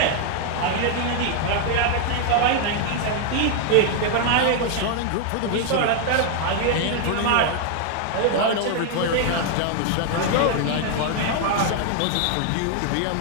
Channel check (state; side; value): different; both; correlation 0.00